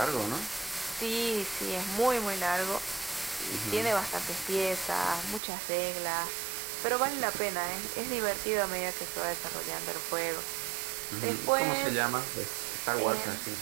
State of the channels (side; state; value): left; drops out; at 5.4 s